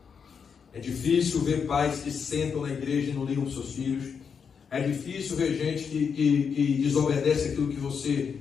É difícil ver pais que sentam na igreja e não ligam para os seus filhos. É difícil ver gente que desobedece aquilo que você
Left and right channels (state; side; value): quieter; right; 6.4 dB